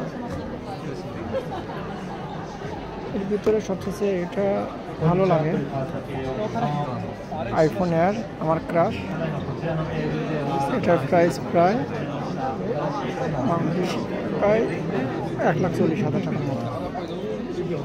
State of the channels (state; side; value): identical; both; correlation 1.00